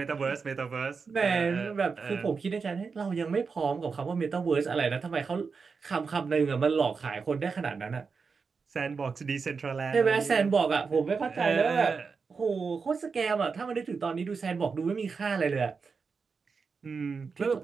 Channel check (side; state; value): left; quieter; 5.1 dB